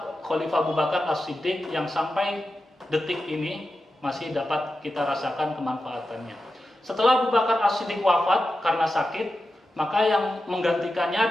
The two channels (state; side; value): normal; both; correlation 0.91